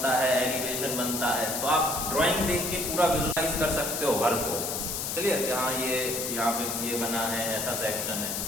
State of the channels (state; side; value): noise; left; hiss, 2 dB below the sound